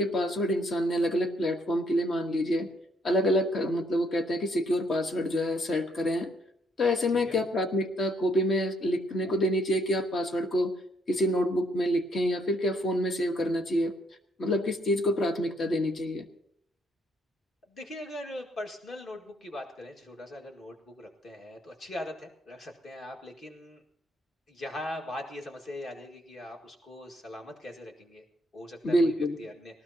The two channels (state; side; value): normal; both; correlation 0.70